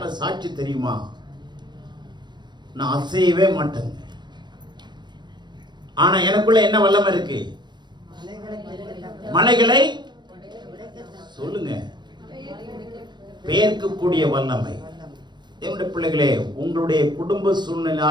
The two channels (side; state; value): left; late; 0.22 ms